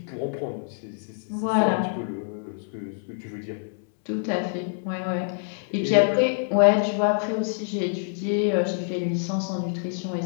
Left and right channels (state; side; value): silent; right; 61 dB below the other